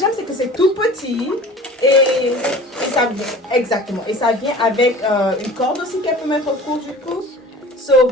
c'est que c'est tout petit et ça vient exactement. Et ça vient avec une corde aussi qu'elle peut mettre autour du cou. So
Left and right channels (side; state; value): both; normal; correlation 0.42